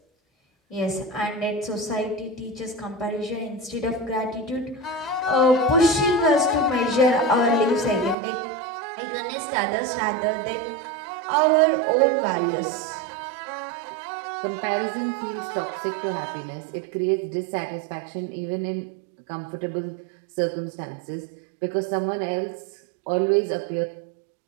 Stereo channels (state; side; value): drops out; left; at 8.2 s